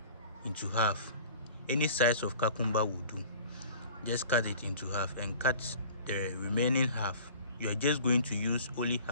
into half. Any size of cucumber will do. Just cut it into half and cut the remaining half. You are just going to use only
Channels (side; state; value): both; inverted; correlation -0.45